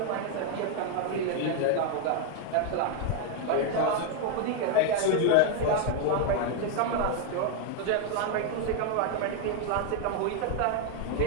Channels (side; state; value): both; different; correlation 0.00